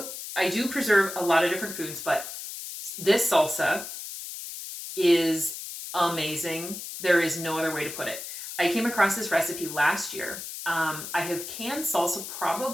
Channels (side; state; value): left; noise; hiss, 9 dB below the sound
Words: preserve a lot of different foods, but this salsa is amazing. There is no other way to put it. I came across this recipe last year. I have canned salsa